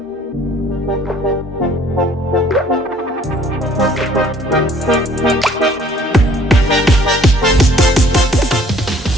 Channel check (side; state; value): both; normal; correlation 0.57